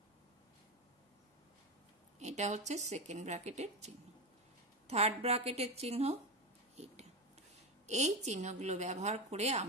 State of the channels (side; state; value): both; normal; correlation 0.16